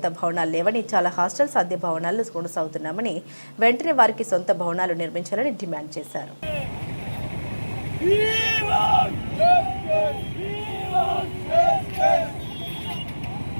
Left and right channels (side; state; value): both; inverted; correlation -1.00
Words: భవనాలు లేవని, చాలా హాస్టల్స్ అద్దె భవనాల్లో కొనసాగుతున్నామని, వెంటనే వారికి సొంత భవనాలు నిర్మించాలని డిమాండ్ చేశారు.